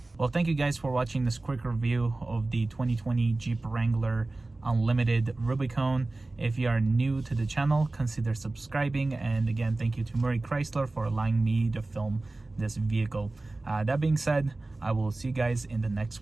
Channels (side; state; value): left; quieter; 3.1 dB